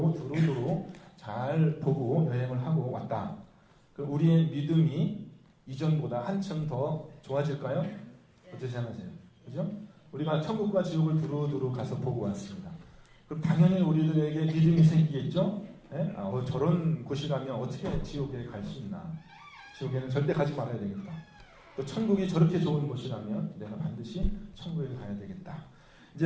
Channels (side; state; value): both; identical; correlation 1.00